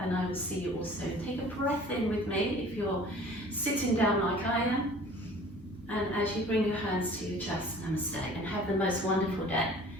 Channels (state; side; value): normal; both; correlation 0.48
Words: and I will see you all soon. Take a breath in with me if you're sitting down like I am. And as you bring your hands to your chest, namaste, and have the most wonderful day.